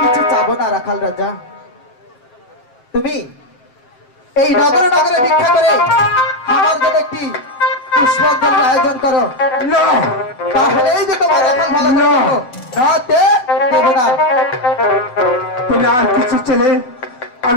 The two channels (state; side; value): late; right; 7.9 ms